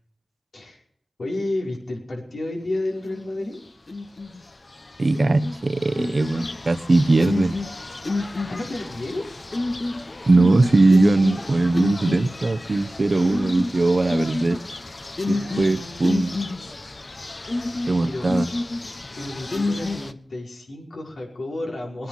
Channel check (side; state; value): both; normal; correlation 0.97